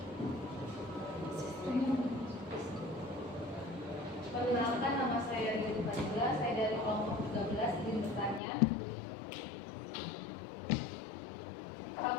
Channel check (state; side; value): drops out; right; at 8.4 s